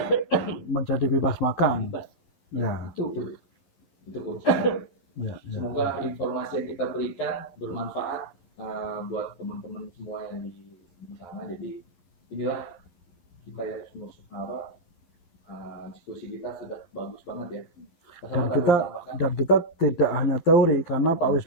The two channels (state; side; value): late; right; 12 ms